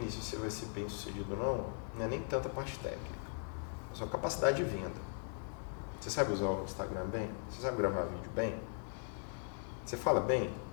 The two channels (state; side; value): silent; right; 52 dB below the other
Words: se você vai ser bem sucedido ou não é nem tanta parte técnica. É só capacidade de venda. Você sabe usar o Instagram bem? Você sabe gravar vídeo bem? Você fala bem?